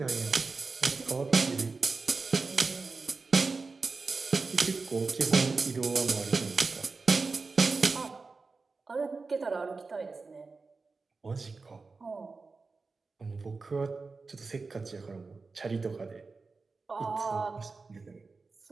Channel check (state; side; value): quieter; left; 4.1 dB